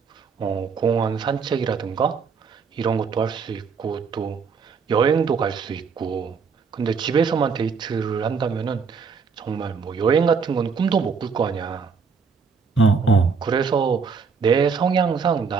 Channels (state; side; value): quieter; left; 5.6 dB